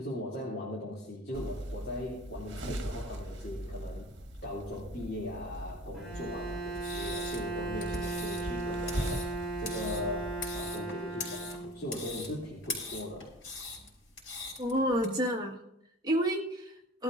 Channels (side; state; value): both; normal; correlation 0.42